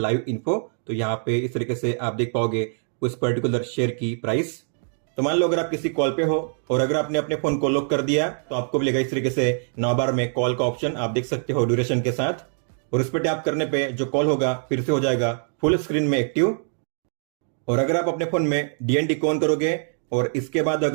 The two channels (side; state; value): left; silent; 59 dB below the other